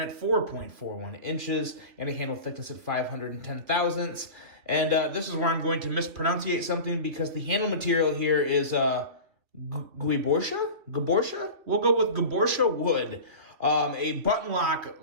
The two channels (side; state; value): left; late; 2.8 ms